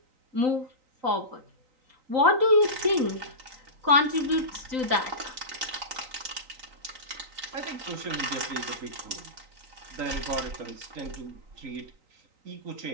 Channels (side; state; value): left; late; 3.9 ms